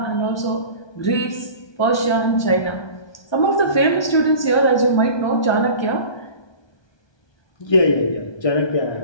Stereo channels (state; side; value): late; right; 1.2 ms